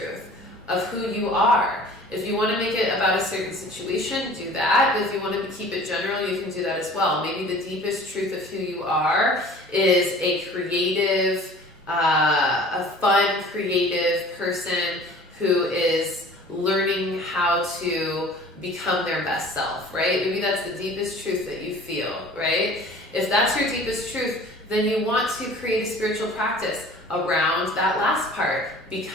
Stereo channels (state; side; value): normal; both; correlation 0.46